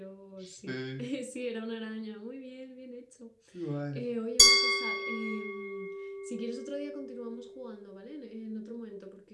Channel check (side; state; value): both; identical; correlation 1.00